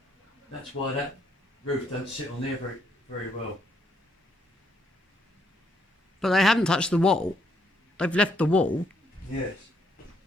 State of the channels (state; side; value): normal; both; correlation 0.73